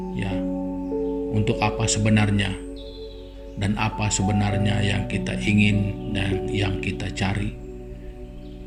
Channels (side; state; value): both; identical; correlation 1.00